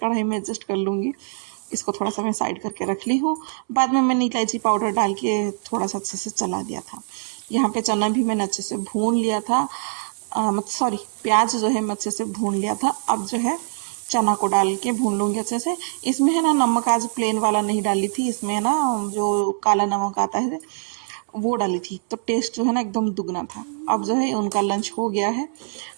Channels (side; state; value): left; silent; 63 dB below the other